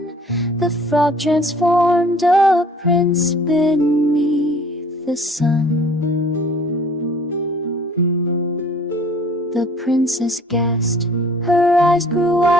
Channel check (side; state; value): both; normal; correlation 0.52